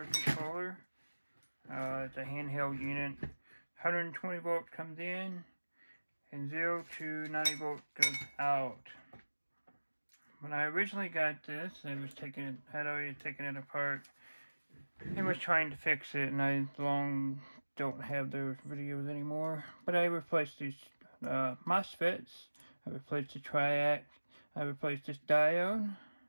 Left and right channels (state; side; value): inverted; both; correlation -1.00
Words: controller. It's a handheld unit. 120 volts comes in, and 0 to 90 volts goes out. When I originally got this, I was had already taken it apart and was trying to fix it, and I don't have those videos anymore. But I replaced these MOSFETs, I replaced the triac, I replaced this diode,